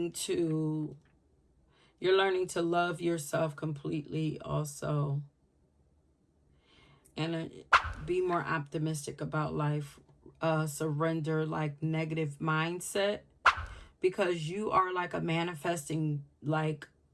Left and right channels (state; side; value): identical; both; correlation 1.00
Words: to, you're learning to love yourself completely also. And be more optimistic about life. Surrender like negative mindset, because you are like a manifesting like